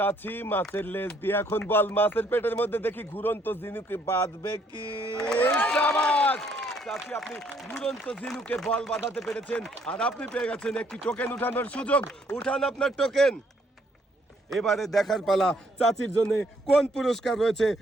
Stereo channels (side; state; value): both; normal; correlation 0.67